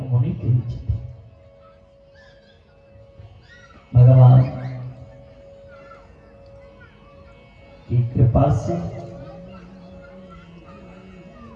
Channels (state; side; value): identical; both; correlation 1.00